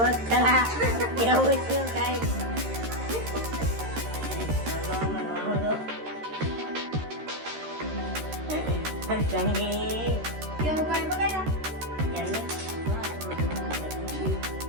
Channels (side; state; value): left; late; 13 ms